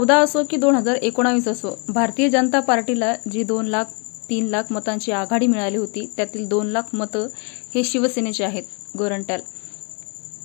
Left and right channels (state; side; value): quieter; right; 36.2 dB